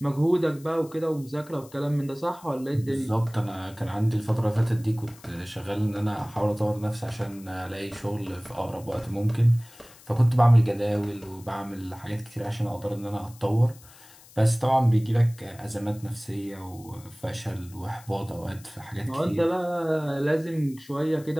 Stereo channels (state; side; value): noise; left; hiss, 23 dB below the sound